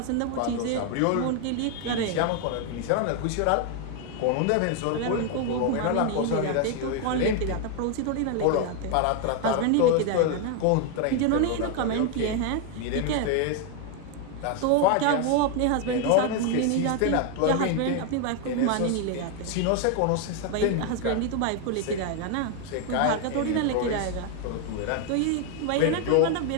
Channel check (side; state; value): both; different; correlation 0.01